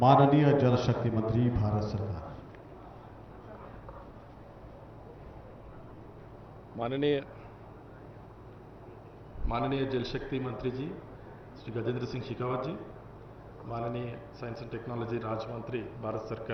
माननीय जल शक्ति मंत्री भारत सरकार। माननीय जल शक्ति मंत्री जी श्री गजेंद्र सिंह शेखावत जी, माननीय साइंस एंड टेक्नोलॉजी राज्य मंत्री भारत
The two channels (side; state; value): both; identical; correlation 1.00